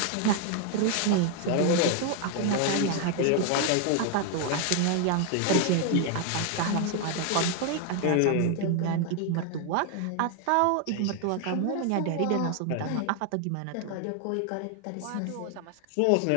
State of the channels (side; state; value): both; different; correlation 0.00